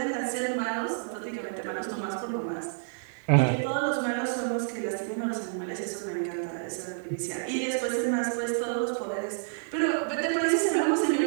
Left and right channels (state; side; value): silent; left; digital silence